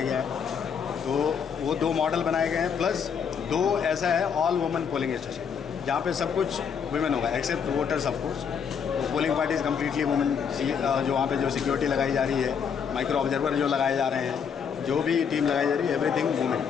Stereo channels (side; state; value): right; quieter; 7.0 dB